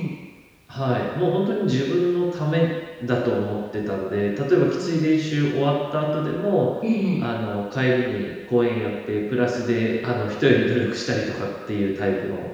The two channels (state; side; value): identical; both; correlation 1.00